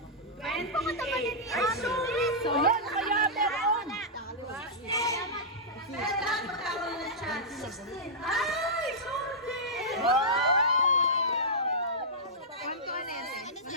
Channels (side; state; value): both; normal; correlation -0.11